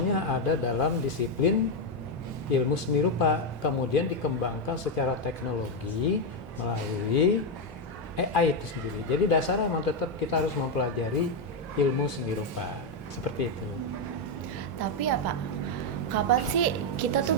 ada dalam disiplin ilmu seni rupa. Kemudian dikembangkan secara teknologi melalui AI itu sendiri. Jadi dasarnya memang tetap kita harus mempelajari ilmu seni rupa. Seperti itu. Tapi ya Pak, kapan sih kita tuh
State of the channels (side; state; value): both; normal; correlation 0.04